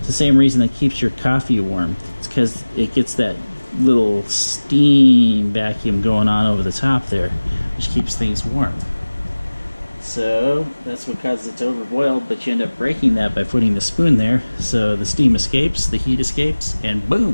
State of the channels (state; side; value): inverted; both; correlation -1.00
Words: the same reason that keeps your coffee warm. It's because it gets that little steam vacuum going on over the top there, which keeps things warm. So that's what causes it to overboil, but you end up breaking that by putting the spoon there, so the steam escapes, the heat escapes, and